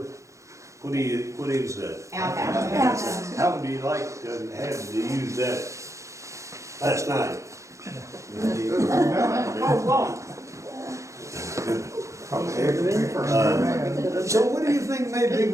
What is that? Outhouse. How would you like to have to use that last night? So what do you think made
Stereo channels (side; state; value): left; late; 0.15 ms